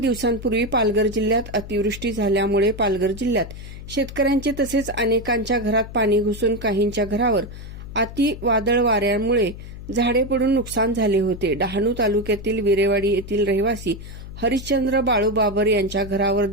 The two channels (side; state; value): left; noise; hum, 12 dB below the sound